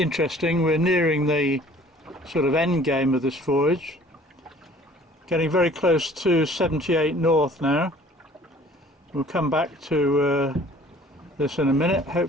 We're nearing the sort of end game of this voyage. Getting very close to 78 north now. We'll come back to this in a minute.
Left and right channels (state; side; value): normal; both; correlation 0.52